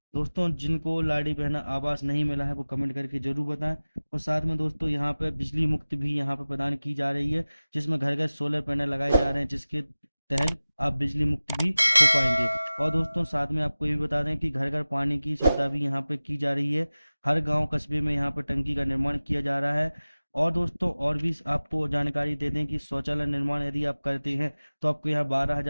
दोस्तों जिनको लाडली बहना आवास नहीं मिला है वो कमेंट करके जरूर बताएं। और साथ में दोस्तों यहाँ पे बिजली मुक्त भी यहाँ पे प्रदान की जा रही है, जिसमें घर घर सोलर पैनल लगाए जा रहे हैं, जिसके तहत आप बिजली मुक्त भी हो पाएंगे। और दोस्तों साथ में आपको ये भी बता दें कि घर घर पानी की सुविधा भी यहाँ पे की जा रही है। हर गांव कस्बे में यहाँ पे टंकी का निर्माण किया जा रहा है। और दोस्तों और भी आपको जानकारी दे दें कि शौचालय निर्माण यदि आप करते हैं तो आपको यहाँ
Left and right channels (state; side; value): inverted; both; correlation -0.98